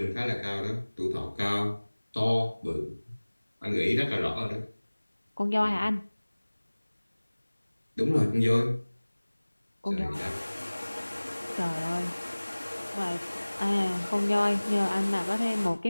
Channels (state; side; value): inverted; both; correlation -1.00